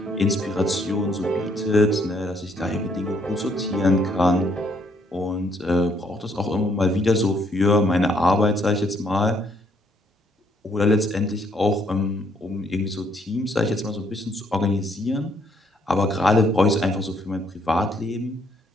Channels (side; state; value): both; normal; correlation 0.69